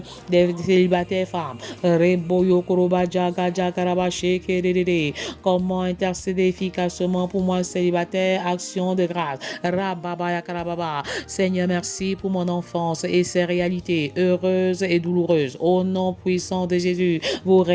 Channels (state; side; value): identical; both; correlation 1.00